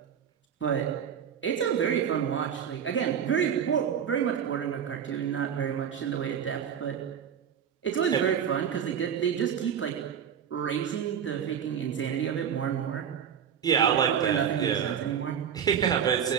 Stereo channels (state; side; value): quieter; left; 8.2 dB